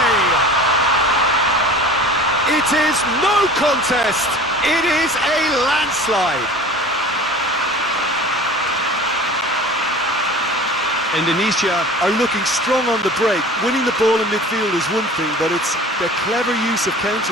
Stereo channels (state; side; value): normal; both; correlation 0.41